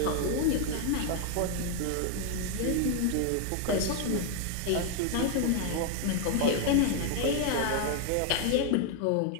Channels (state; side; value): different; both; correlation 0.00